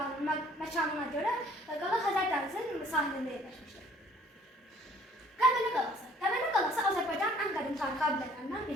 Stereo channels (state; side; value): normal; both; correlation 0.57